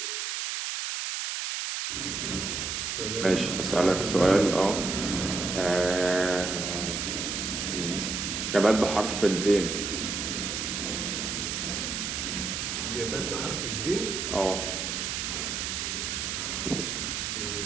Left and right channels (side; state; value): right; noise; hiss, 2 dB below the sound